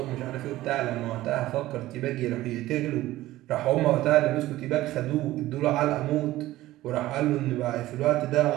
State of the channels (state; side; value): quieter; left; 16.1 dB